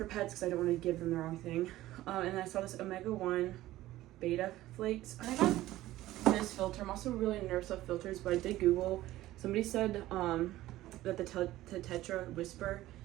pets because I don't want to give them the wrong thing. And then I saw this Omega-1 beta flakes. I got this filter. I'm also really nervous about filters, but I did Google. Somebody said that the Tetra Whisper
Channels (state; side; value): quieter; left; 15.7 dB